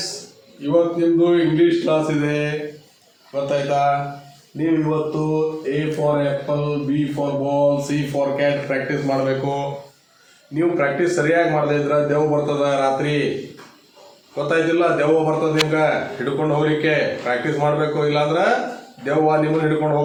ಇವತ್ತು ನಿಮ್ಮದು ಇಂಗ್ಲೀಷ್ ಕ್ಲಾಸ್ ಇದೆ, ಗೊತ್ತಾಯ್ತಾ? ನೀವು ಇವತ್ತು A for apple, B for ball, C for cat practice ಮಾಡಬೇಕು. ನೀವು ಪ್ರಾಕ್ಟೀಸ್ ಸರಿಯಾಗಿ ಮಾಡದೇ ಇದ್ರೆ ದೆವ್ವ ಬರ್ತದ ರಾತ್ರಿ, ಗೊತ್ತಾಯ್ತಿಲ್ಲ? ದೆವ್ವ ಬರ್ತದೆ ನಿಮ್ಗೆ ಹಿಡ್ಕೊಂಡು ಹೋಗ್ಲಿಕ್ಕೆ. ಪ್ರಾಕ್ಟೀಸ್ ಮಾಡಬೇಕು, ಇಲ್ಲಾಂದ್ರೆ ದೆವ್ವ ನಿಮ್ಮನ್ನು ಹಿಡ್ಕೊಂಡು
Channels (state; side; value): identical; both; correlation 1.00